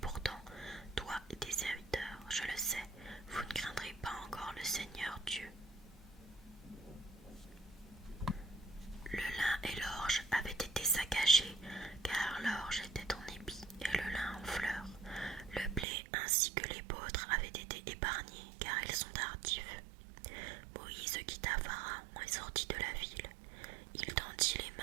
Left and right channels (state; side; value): drops out; left; at 15.9 s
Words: toi et tes serviteurs, je le sais, vous ne craindrez pas encore le Seigneur Dieu. Le lin et l'orge avaient été saccagés, car l'orge était en épi et le lin en fleurs. Le blé ainsi que les l'épeautre avaient été épargnés, car ils sont tardifs. Moïse quitta Pharaon et sortit de la ville. Il tendit les